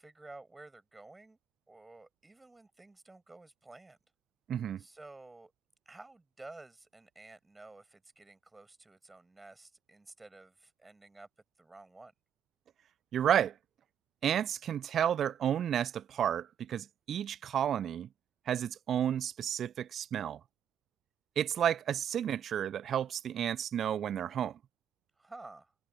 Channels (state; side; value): quieter; left; 9.2 dB